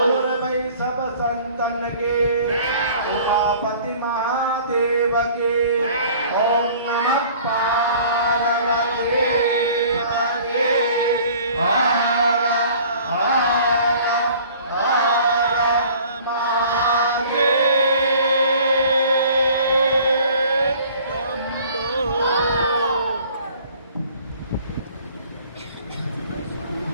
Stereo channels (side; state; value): both; inverted; correlation -0.51